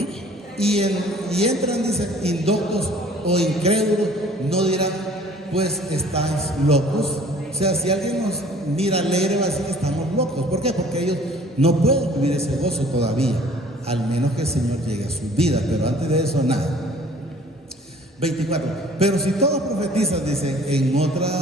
y entran, dice, indoctos o incrédulos, no dirán, pues estáis locos. O sea, si alguien nos mira alegre, va a decir que estamos locos. ¿Por qué? Porque ellos no pueden vivir ese gozo todavía, al menos que el Señor llegue a su vida, pero antes de eso, nada. 24. Pero si todos profetizan, dice,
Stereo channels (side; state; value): both; normal; correlation 0.52